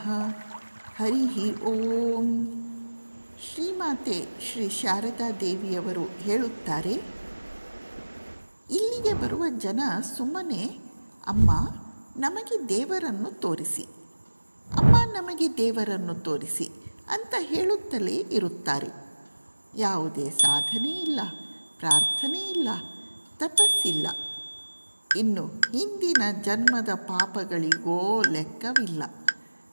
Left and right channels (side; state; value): both; inverted; correlation -1.00